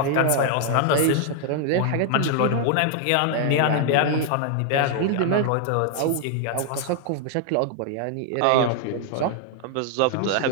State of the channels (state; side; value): different; both; correlation 0.00